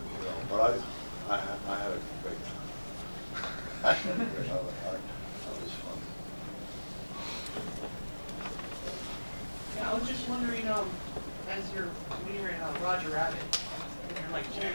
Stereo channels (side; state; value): both; inverted; correlation -1.00